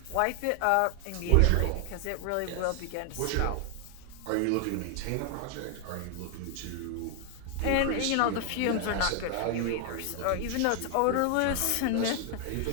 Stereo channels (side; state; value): both; different; correlation 0.00